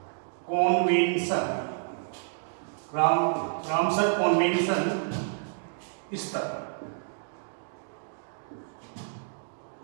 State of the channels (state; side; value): silent; left; digital silence